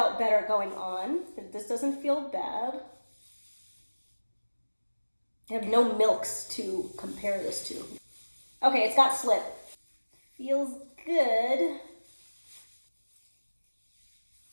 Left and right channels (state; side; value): inverted; both; correlation -1.00